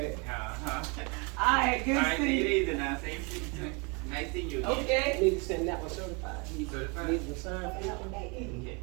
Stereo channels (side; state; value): left; quieter; 31.4 dB